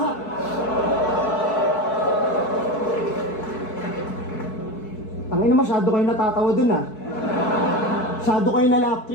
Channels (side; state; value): right; late; 4.6 ms